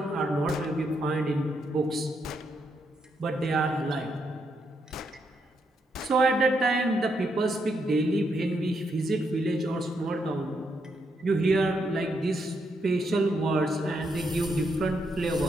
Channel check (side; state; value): both; normal; correlation 0.79